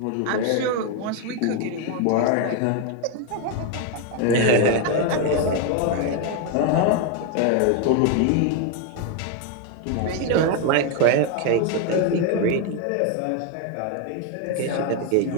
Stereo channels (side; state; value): both; different; correlation 0.01